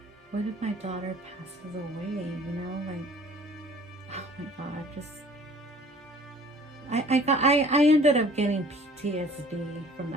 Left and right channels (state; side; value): normal; both; correlation 0.51